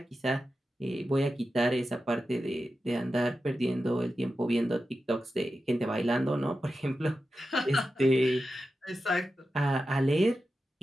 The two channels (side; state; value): both; normal; correlation 0.91